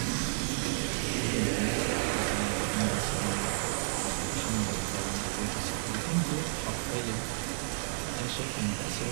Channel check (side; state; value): left; silent; 57 dB below the other